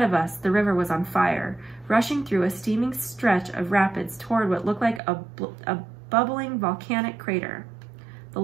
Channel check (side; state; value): left; drops out; at 5.0 s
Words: of us, the river was on fire, rushing through a steaming stretch of rapids toward what looked like a bubbling volcanic crater. The